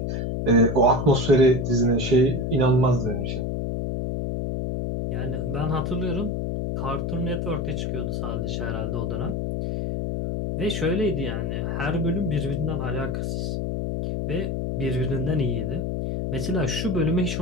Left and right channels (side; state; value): left; noise; hum, 1 dB below the sound